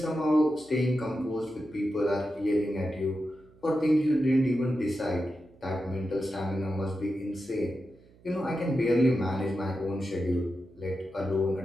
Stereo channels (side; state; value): right; noise; hum, 27 dB below the sound